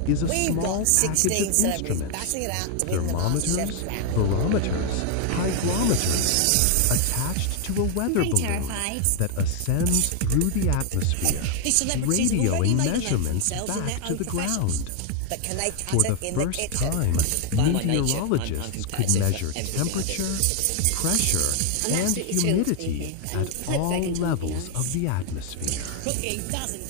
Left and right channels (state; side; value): different; both; correlation 0.00